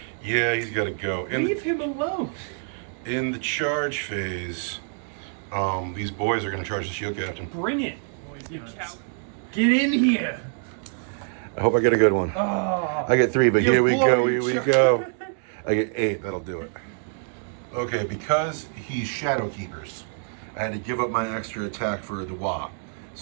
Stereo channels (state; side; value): silent; left; 61 dB below the other